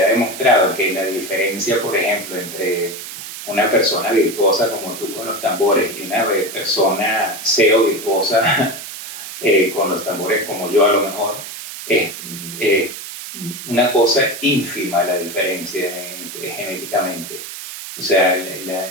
ha demostrado que la diferencia, por ejemplo, entre una persona virtuosa como tú con los tambores y una persona cero virtuosa con los tambores como yo a lo mejor, es una cosa ínfima la diferencia genéticamente. O sea,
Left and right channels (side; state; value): right; noise; hiss, 10 dB below the sound